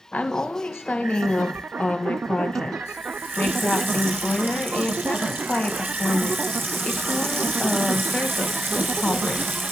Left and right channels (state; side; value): normal; both; correlation 0.85